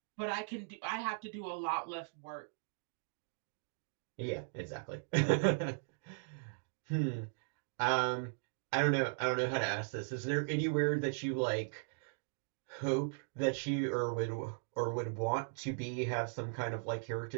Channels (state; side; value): silent; left; digital silence